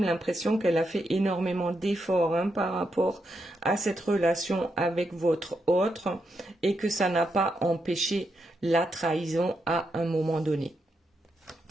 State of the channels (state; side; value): normal; both; correlation 0.83